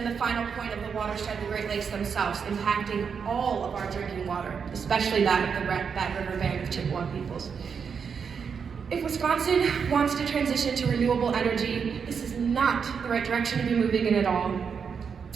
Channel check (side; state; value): left; quieter; 6.4 dB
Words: the final point of the watershed, the Great Lakes themselves, impacting all of our drinking water, especially that of the Bad River Band of Chippewa peoples. If Wisconsin wants to transition to renewable energy, this is not the right direction to be moving in at all.